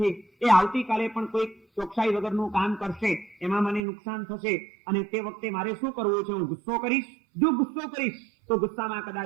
એ આવતીકાલે પણ કોઈ ચોકસાઈ વગરનું કામ કરશે, એમાં મને નુકસાન થશે, અને તે વખતે મારે શું કરવું છે? હું ગુસ્સો કરીશ. જો ગુસ્સો કરીશ તો ગુસ્સામાં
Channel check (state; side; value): drops out; left; at 3.8 s